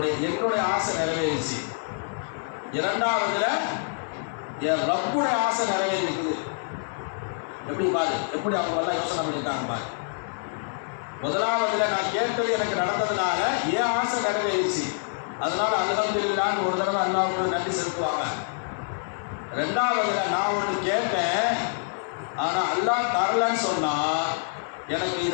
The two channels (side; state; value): right; silent; 59 dB below the other